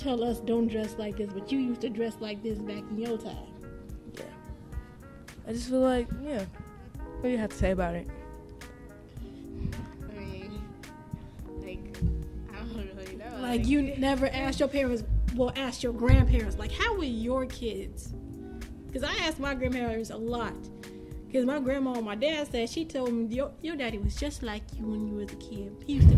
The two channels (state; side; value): identical; both; correlation 1.00